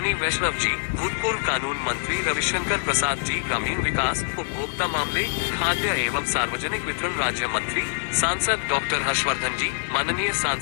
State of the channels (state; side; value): silent; right; digital silence